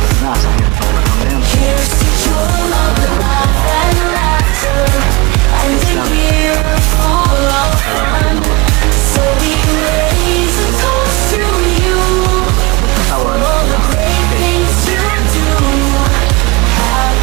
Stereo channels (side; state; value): left; quieter; 24.8 dB